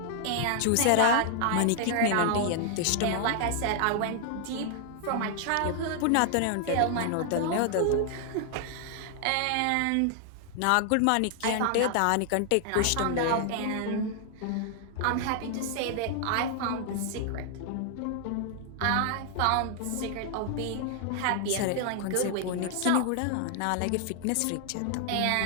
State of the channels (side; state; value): both; different; correlation 0.00